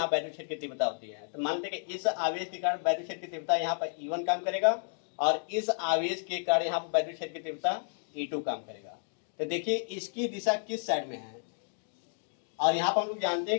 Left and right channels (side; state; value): right; silent; digital silence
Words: वैद्युत क्षेत्र की तीव्रता होती है। तो मान लेते हैं कि इस आवेश के कारण वैद्युत क्षेत्र की तीव्रता यहाँ पर E1 काम करेगा और इस आवेश के कारण यहाँ पर वैद्युत क्षेत्र की तीव्रता E2 काम करेगा। तो देखिए इसकी दिशा किस साइड में है, और यहाँ पर हम लोग जानते